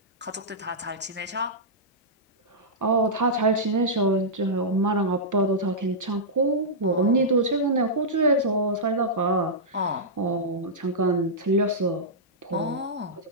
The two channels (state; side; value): normal; both; correlation -0.12